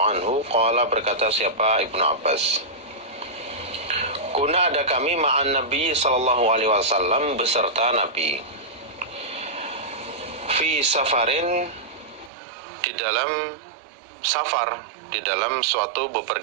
anhu qala, berkata siapa Ibnu Abbas, kuna, ada kami ma'an Nabi sallallahu alaihi wasallam, beserta Nabi, fi safarin, di dalam safar, di dalam suatu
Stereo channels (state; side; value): drops out; left; at 12.3 s